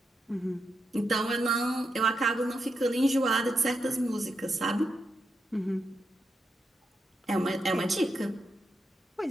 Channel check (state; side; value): normal; both; correlation 0.84